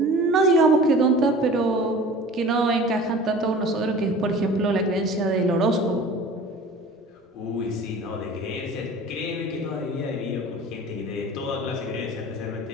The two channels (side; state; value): both; normal; correlation 0.42